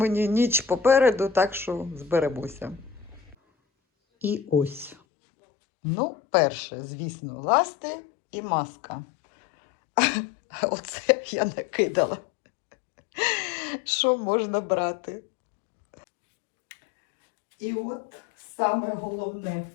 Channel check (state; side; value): drops out; right; at 5.0 s